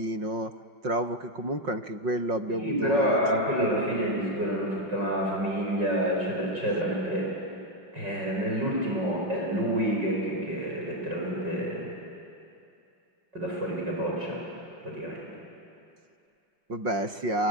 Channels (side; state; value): left; late; 5.6 ms